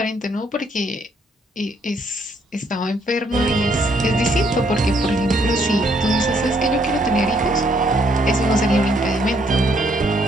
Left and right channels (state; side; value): normal; both; correlation 0.69